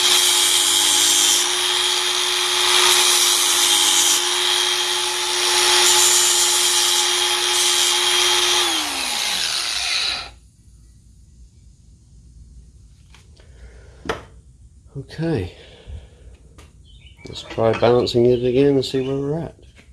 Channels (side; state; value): both; identical; correlation 1.00